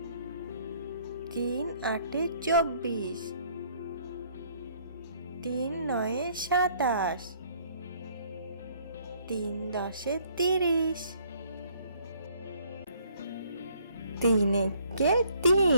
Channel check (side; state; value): both; inverted; correlation -0.63